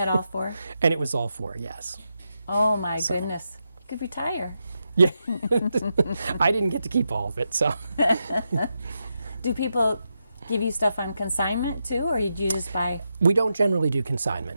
all 4? and it was all 4, yes. Oh my goodness. You could retire. Yeah, I didn't get to keep all of it, so. Do people give you stuff on consignment too, or do you just buy? We don't generally do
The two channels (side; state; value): both; inverted; correlation -0.86